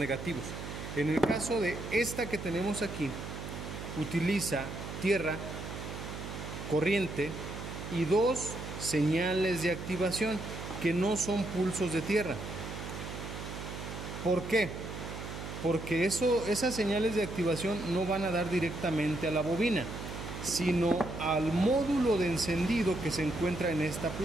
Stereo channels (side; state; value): right; noise; hum, 8 dB below the sound